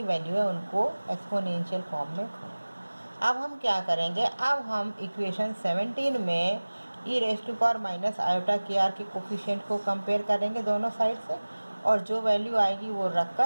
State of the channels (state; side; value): inverted; both; correlation -1.00